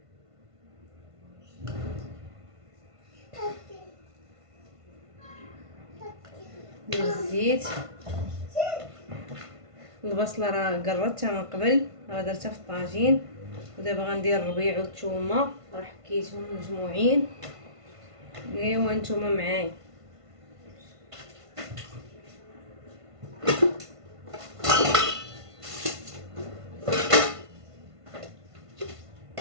ندير الزيت. البصله راه قرطتها من قبل، راه درتها في الطاجين. ودابا غندير الربيع والثومه، راه حكيتهم مجموعين. ايوا نتوما معايا.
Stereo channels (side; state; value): left; late; 1.5 ms